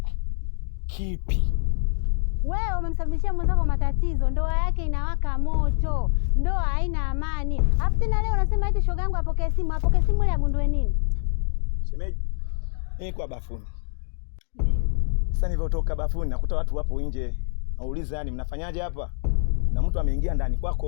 Kipi? Wewe umemsababishia mwenzako matatizo, ndoa yake inawaka moto, ndoa haina amani. Alafu tena leo unasema eti shoga yangu apokee simu ile agundue nini? Shemeji, kwa bafuni. Ndio. Sasa nilivyotoka bafuni nakuta watu wapo nje. Nauliza yani mnafanyaje hapa? Na mtu ameingia ndani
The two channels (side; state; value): right; silent; 62 dB below the other